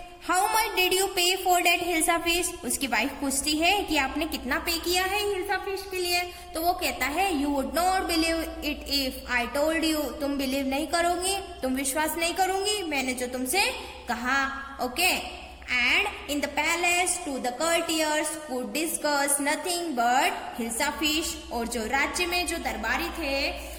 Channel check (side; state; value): both; identical; correlation 1.00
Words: हाउ मच डिड यू पे फॉर डेट हिल्सा फिश? उसकी वाइफ पूछती है कि आपने कितना पे किया है हिल्सा फिश के लिए? तो वो कहता है you would not believe it if I told you. तुम बिलीव नहीं करोगी, तुम विश्वास नहीं करूंगी मैंने जो तुमसे कहा। Okay, and in the palace too the courtiers could discuss nothing but hilsa fish. और जो राज्य में जो दरबारी थे